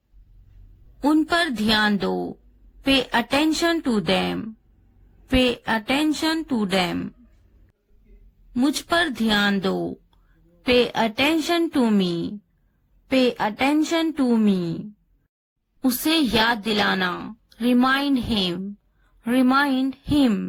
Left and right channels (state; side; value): identical; both; correlation 1.00